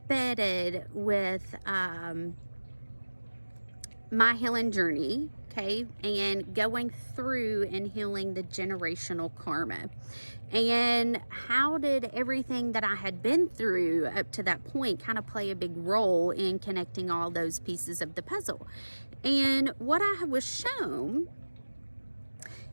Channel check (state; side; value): inverted; both; correlation -1.00